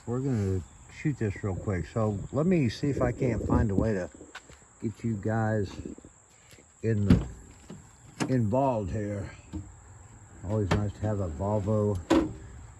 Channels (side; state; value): both; identical; correlation 1.00